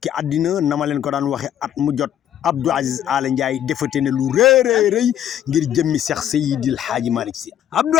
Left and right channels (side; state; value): right; quieter; 10.5 dB